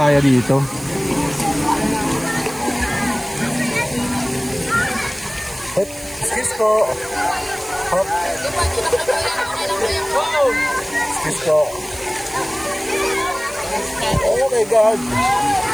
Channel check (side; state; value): right; noise; hiss, 19 dB below the sound